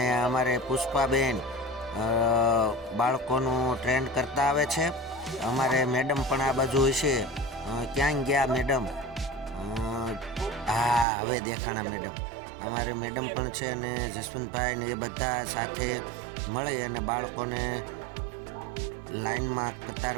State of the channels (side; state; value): left; drops out; at 11.1 s